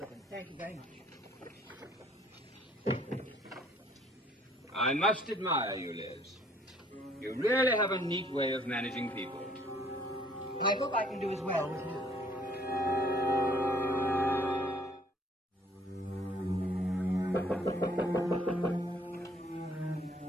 him. Thank you very much. I must admire you, Liz. You really have a neat way of managing people. I hope I can do as well with you.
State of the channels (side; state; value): both; normal; correlation 0.60